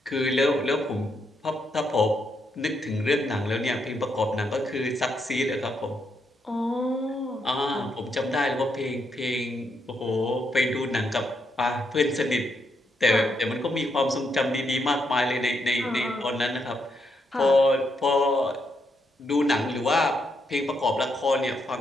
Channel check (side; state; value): both; normal; correlation 0.79